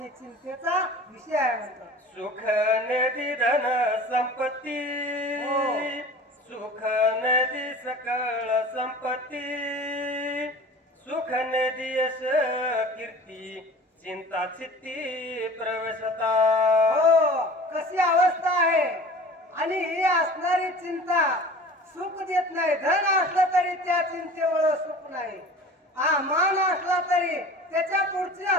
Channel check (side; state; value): both; normal; correlation 0.41